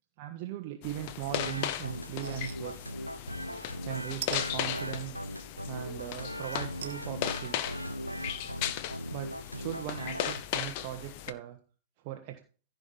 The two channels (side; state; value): both; inverted; correlation -0.33